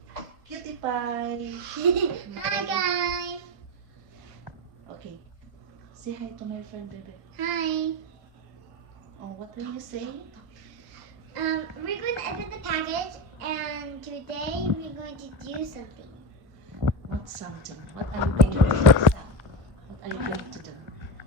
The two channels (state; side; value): late; left; 2.1 ms